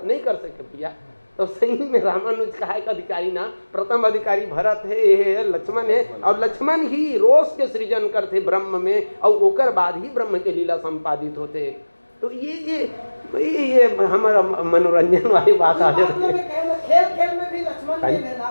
नहीं कर सके भैया। तो सही में रामानुज का एक अधिकारी ना, प्रथम अधिकारी भरत है, ये लक्ष्मण है, और लक्ष्मण ही रोष के सृजन करते ब्रह्म में और ओकर बाद ही ब्रह्म के लीला संपादित होते। तो ये हमारा मनोरंजन वाली बात आ जाती है। खेल में भी लक्ष्मण ले लेना,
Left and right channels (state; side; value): inverted; both; correlation -1.00